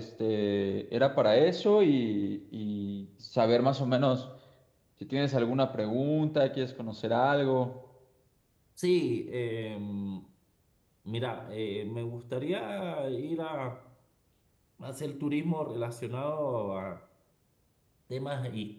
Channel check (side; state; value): both; identical; correlation 1.00